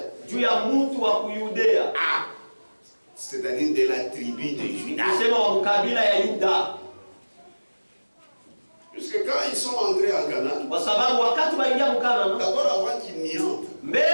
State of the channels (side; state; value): both; inverted; correlation -1.00